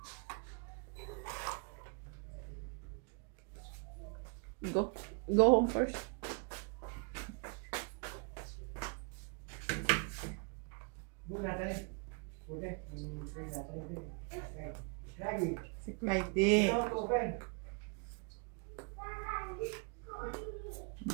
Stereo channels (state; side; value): quieter; left; 35.9 dB